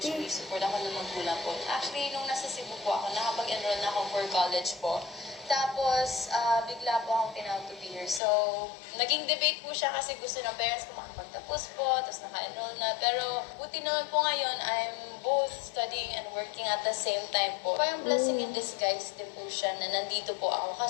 Ate. support ako ng magulang po. Actually, nung nasa Cebu po ako, nakapag-enroll na ako for college po. Tapos, bigla po akong tinawag to be here. So, naging debate po siya kasi gusto ng parents ko makapagtapos po, tapos naka-enroll na. Pero, buti naman po ngayon, I'm both studying and working at the same time po. Parang blessing in disguise din po siya na nandito po ako.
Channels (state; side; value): drops out; right; at 8.2 s